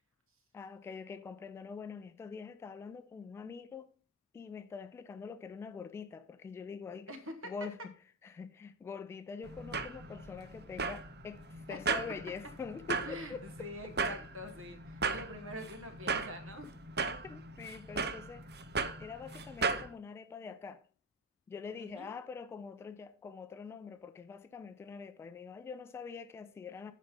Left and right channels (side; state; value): both; normal; correlation 0.14